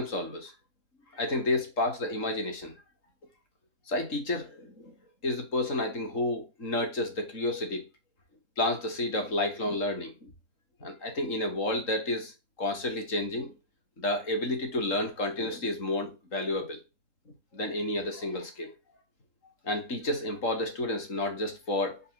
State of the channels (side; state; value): right; late; 3.8 ms